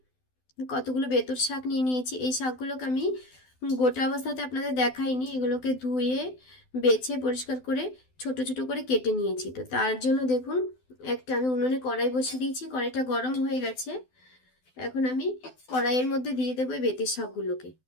কতগুলো বেতর শাক নিয়ে নিয়েছি। এই শাকগুলোকে আমি গোটা অবস্থাতে আপনাদের দেখাইনি, এগুলোকে ধুয়ে বেছে পরিষ্কার করে ছোট ছোট করে কেটে নিয়েছি। তো তার জন্য দেখুন আমি উনুনে কড়াই বসিয়ে দিয়েছি, কড়াইটা গরম হয়ে গেছে। এখন আমি কড়াইয়ের মধ্যে দিয়ে দেবো বেতের শাকগুলোকে।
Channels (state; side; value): late; right; 12 ms